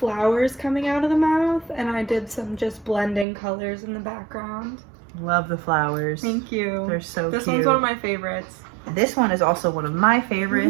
coming out of the mouth, and I did some just blending colors in the background. Love the flowers. Thank you. They're so cute. This one's one of my favorites. This one is also one of my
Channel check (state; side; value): drops out; left; at 3.2 s